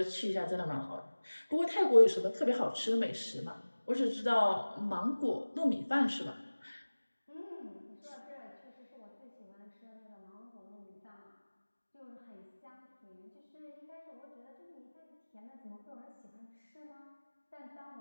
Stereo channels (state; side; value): inverted; both; correlation -1.00